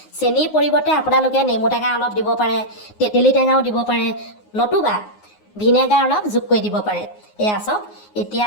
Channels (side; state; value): right; late; 9.6 ms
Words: চেনিৰ পৰিৱৰ্তে আপোনালোকে নেমু টেঙা অলপ দিব পাৰে তেতেলী টেঙাও দিব পাৰে নতুবা ভিনেগাৰ অলপ যোগ কৰি দিব পাৰে এয়া চাওক এতিয়া